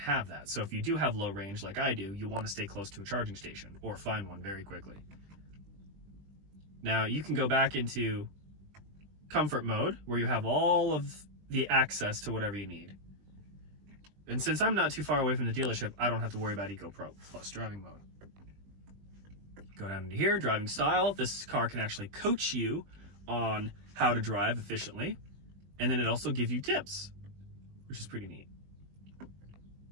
that. So if you do have low range like I do, you want to stay close to a charging station or find one very quickly. Now, you can go back into comfort mode where you have all of the access to whatever you need. And since I'm not too far away from the dealership, I don't have to worry about Eco Pro Plus driving mode. Go down into here, driving style. This car can actually coach you on how to drive efficiently. And then it also gives you tips, which is pretty neat.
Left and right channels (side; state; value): left; late; 20 ms